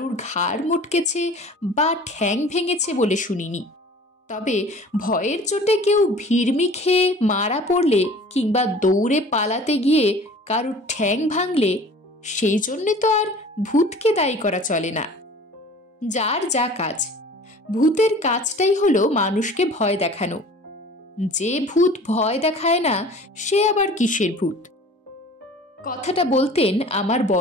ঘাড় মটকেছে বা ঠ্যাং ভেঙেছে বলে শুনিনি। তবে ভয়ের চোটে কেউ ভিড়মি খেয়ে মারা পড়লে কিংবা দৌড়ে পালাতে গিয়ে কারুর ঠ্যাং ভাঙলে সেই জন্যে তো আর ভূতকে দায়ী করা চলে না। যার যা কাজ, ভূতের কাজটাই হলো মানুষকে ভয় দেখানো। যে ভূত ভয় দেখায় না সে আবার কিসের ভূত? কথাটা বলতেন আমার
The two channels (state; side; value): normal; both; correlation 0.45